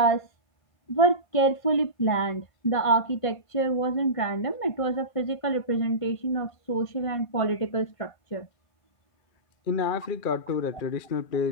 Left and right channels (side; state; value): right; late; 1.5 ms